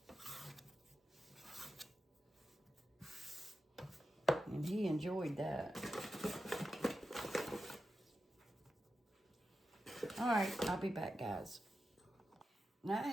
And he enjoyed that. All right, I'll be back, guys. Now, I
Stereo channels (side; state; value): both; normal; correlation 0.91